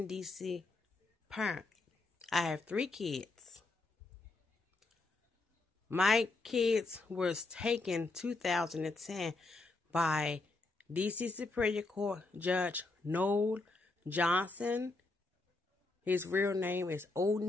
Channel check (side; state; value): right; quieter; 3.3 dB